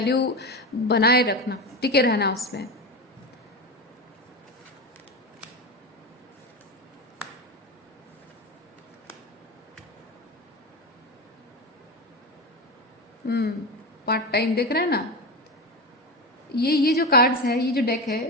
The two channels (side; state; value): both; normal; correlation 0.20